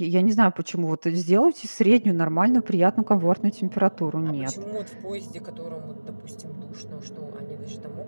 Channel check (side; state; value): both; inverted; correlation -1.00